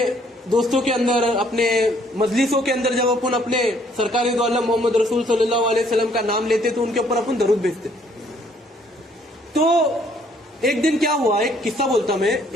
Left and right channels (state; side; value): normal; both; correlation 0.64